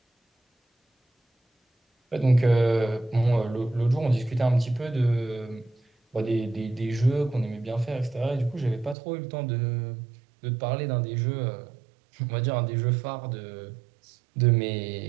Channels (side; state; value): left; drops out; at 9.0 s